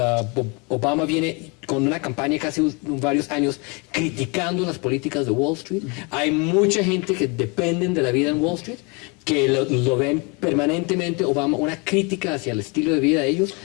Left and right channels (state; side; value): quieter; right; 30.3 dB